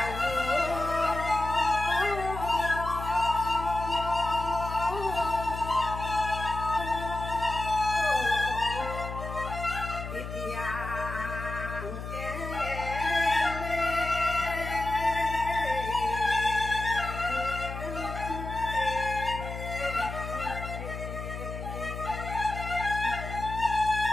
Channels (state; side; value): noise; left; hum, 7 dB below the sound